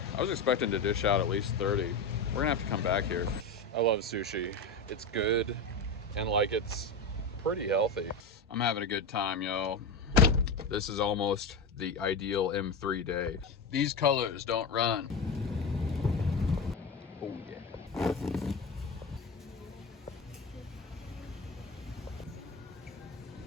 I was expecting to dish out at least 30. We're gonna have to come back here. I love sushi. It's good and like it's pretty healthy. I'm having a good time, yo. This is almost the ideal M3 day. These colors don't run. Oh yeah.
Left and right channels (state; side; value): quieter; right; 3.5 dB